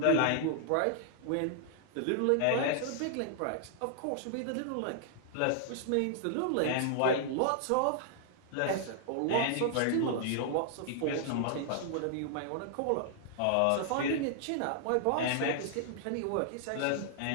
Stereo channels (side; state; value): both; different; correlation -0.01